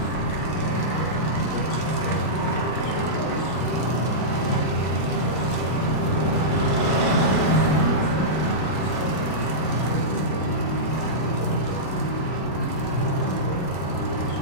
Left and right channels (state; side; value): late; right; 33 ms